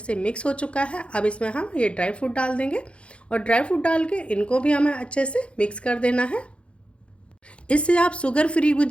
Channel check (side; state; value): right; late; 0.059 ms